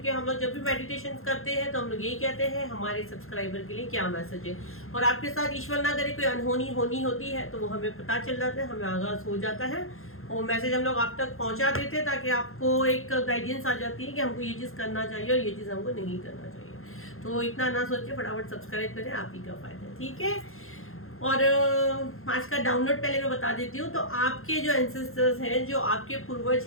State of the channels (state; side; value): late; right; 0.61 ms